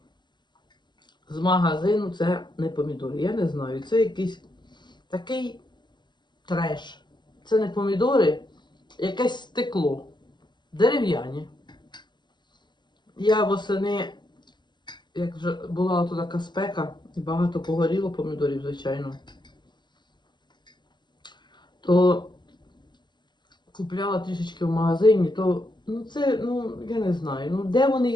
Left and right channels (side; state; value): right; late; 0.21 ms